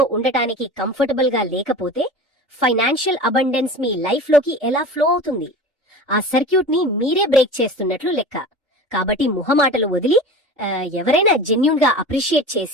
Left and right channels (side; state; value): both; normal; correlation 0.34